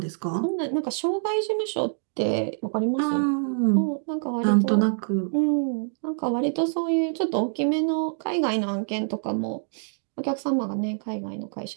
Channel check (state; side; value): silent; left; digital silence